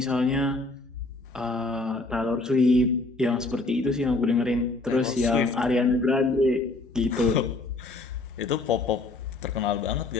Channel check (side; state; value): right; quieter; 3.2 dB